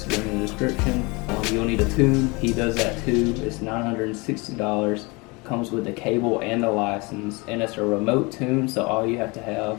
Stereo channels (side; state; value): right; quieter; 26.9 dB